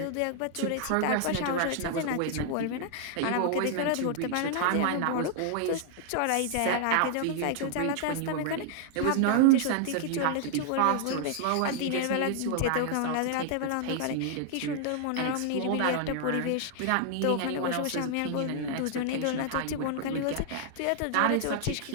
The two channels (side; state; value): both; different; correlation -0.01